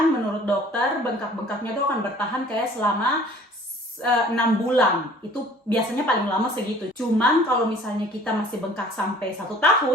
menurut dokter bengkak-bengkaknya tuh akan bertahan kayak selama 6 bulan. Itu biasanya paling lama segitu. Cuman kalau misalnya kita masih bengkak sampai 1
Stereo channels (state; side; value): normal; both; correlation 0.51